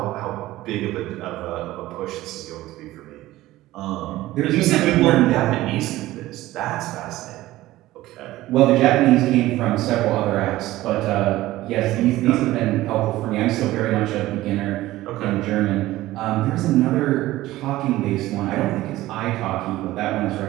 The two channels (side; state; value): left; quieter; 16.6 dB